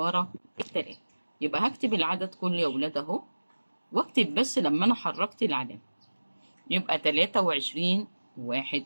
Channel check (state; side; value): inverted; both; correlation -1.00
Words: التلاتة. يبقى هكتب العدد كله يا ولاد اهو، واكتب بس لما انا حركت العلامة. يبقى 23.1.